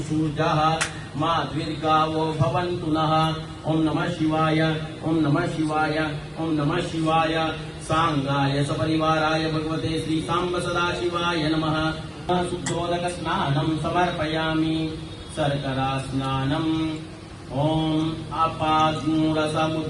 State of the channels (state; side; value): identical; both; correlation 1.00